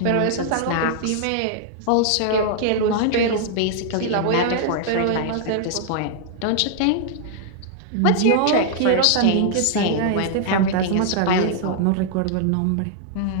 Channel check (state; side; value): different; both; correlation -0.01